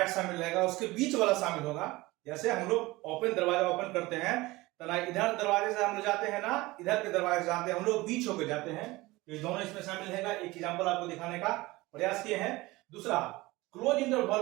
शामिल रहेगा, उसके बीच वाला शामिल होगा। जैसे हम लोग ओपन दरवाजा ओपन करते हैं तो ना इधर दरवाजे से हम लोग जाते हैं, ना इधर के दरवाजे से जाते हैं, हम लोग बीच होकर जाते हैं। तो ये दोनों इसमें शामिल है। एक एग्जांपल आपको दिखाने का प्रयास किए हैं। दूसरा, क्लोज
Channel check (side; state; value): left; quieter; 20.6 dB